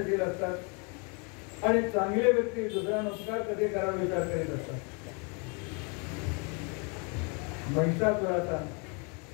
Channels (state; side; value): quieter; right; 34.1 dB